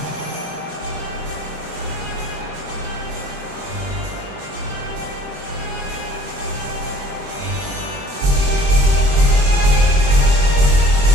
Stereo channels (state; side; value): late; left; 22 ms